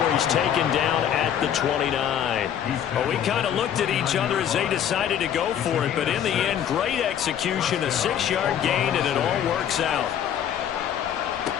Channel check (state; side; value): quieter; right; 9.5 dB